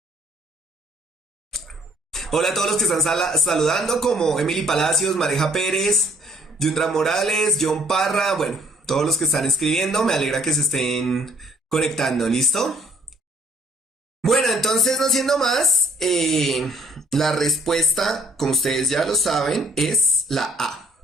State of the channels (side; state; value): both; normal; correlation 0.61